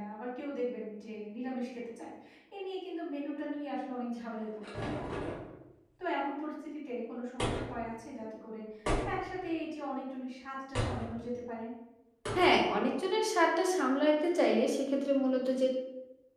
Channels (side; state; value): both; identical; correlation 1.00